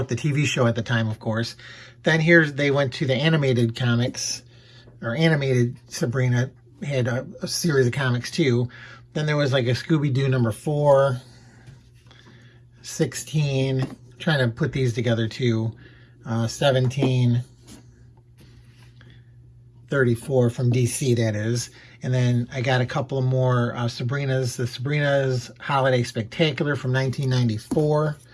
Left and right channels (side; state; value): both; identical; correlation 1.00